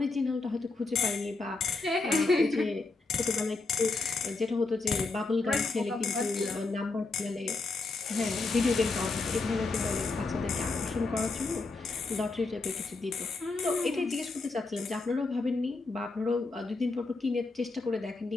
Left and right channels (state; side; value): quieter; right; 3.6 dB